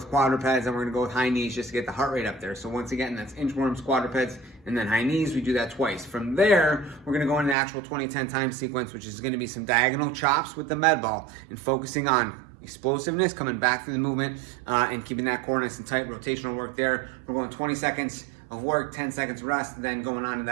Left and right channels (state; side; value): drops out; left; at 7.6 s